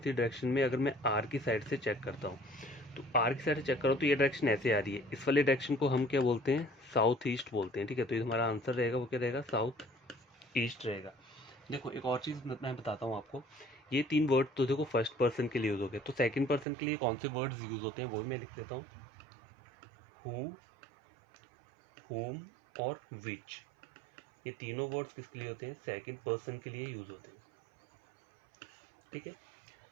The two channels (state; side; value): drops out; left; at 16.7 s